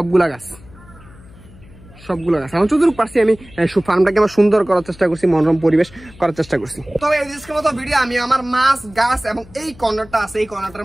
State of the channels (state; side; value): noise; left; hum, 22 dB below the sound